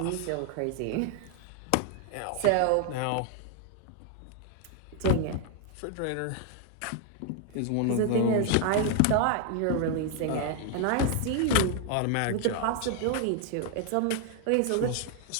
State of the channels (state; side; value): different; both; correlation 0.00